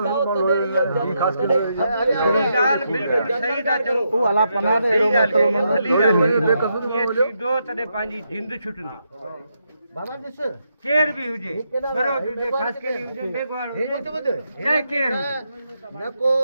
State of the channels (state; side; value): inverted; both; correlation -0.81